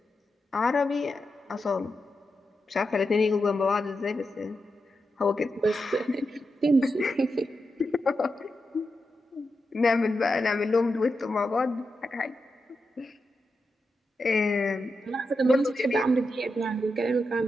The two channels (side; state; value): both; normal; correlation 0.88